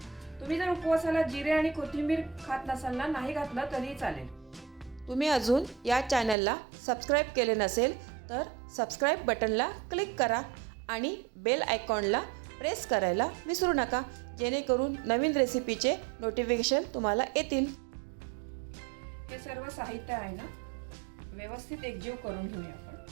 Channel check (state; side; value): drops out; left; at 6.4 s